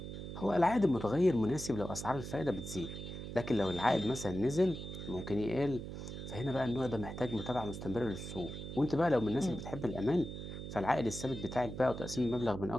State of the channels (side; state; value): right; noise; hum, 8 dB below the sound